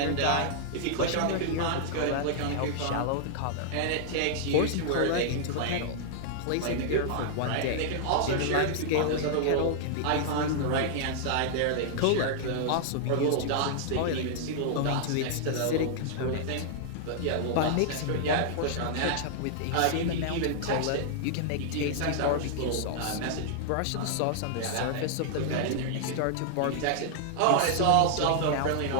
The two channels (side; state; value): both; different; correlation -0.01